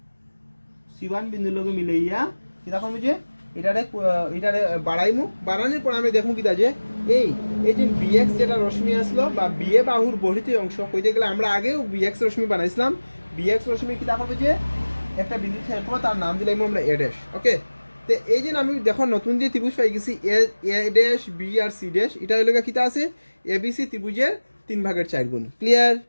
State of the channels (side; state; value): both; inverted; correlation -1.00